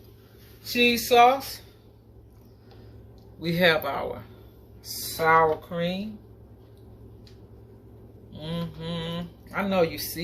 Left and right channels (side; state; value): both; identical; correlation 1.00